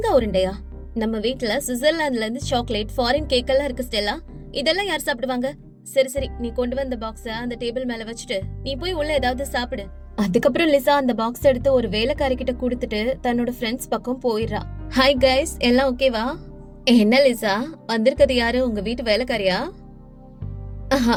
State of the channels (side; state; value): both; identical; correlation 1.00